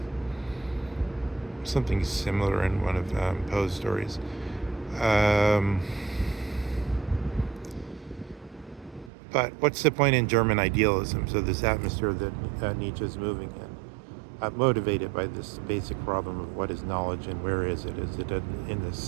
something similar in one of Poe's stories. Um, but what's the point in German idealism? So this atmosphere that Nietzsche is moving in, motivated by this basic problem of what is knowledge and where is it? Is it in the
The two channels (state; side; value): drops out; left; at 9.1 s